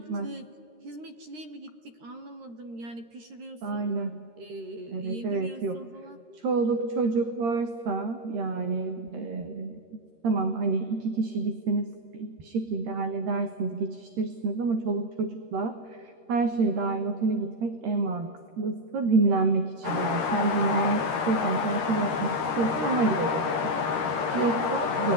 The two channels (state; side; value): late; left; 13 ms